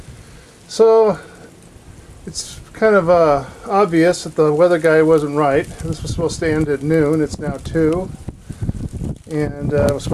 So it's kind of obvious that the weather guy wasn't right. This was supposed to end at noon. It's now 2. And it was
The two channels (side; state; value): both; identical; correlation 1.00